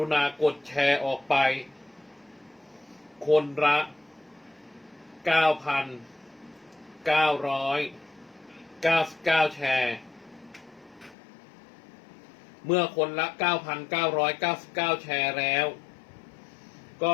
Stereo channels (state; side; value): drops out; right; at 11.2 s